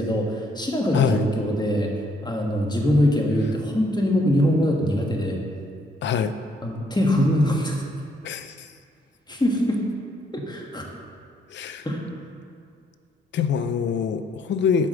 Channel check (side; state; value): both; normal; correlation 0.70